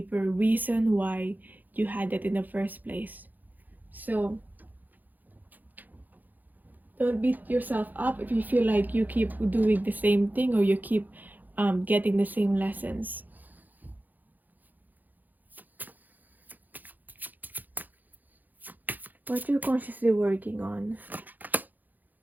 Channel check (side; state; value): left; late; 0.084 ms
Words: reason why you had that in the first place. So don't beat yourself up if you feel like you keep doing the same thing or you keep getting the same lessons. What you're consciously working on